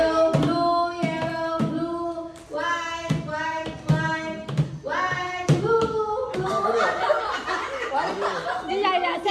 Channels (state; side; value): identical; both; correlation 1.00